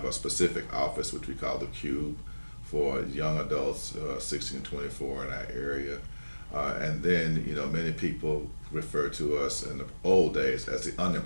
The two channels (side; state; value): both; inverted; correlation -1.00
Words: a specific office, which we call the Cube, for young adults 16 to 24 in our area. And then, many people refer to us in the old days as the